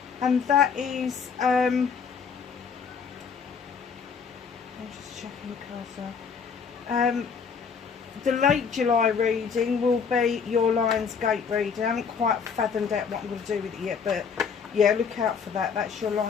And that is, I'm just checking the cards now. The late July reading will be your Lionsgate reading. I haven't quite fathomed out what I'm going to do with it yet, but yeah, look out for that. That's your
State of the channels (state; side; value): quieter; right; 6.1 dB